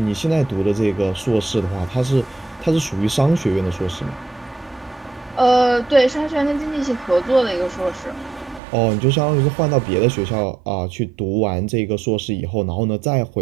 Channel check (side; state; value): left; drops out; at 8.6 s